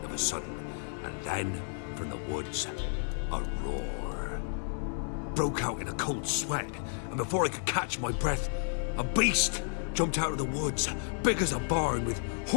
of a sudden. And then, from the woods, a roar. Broke out in a cold sweat, and before I could catch my breath, a beast jumped out of the woods, big as a barn, with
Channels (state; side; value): silent; right; 57 dB below the other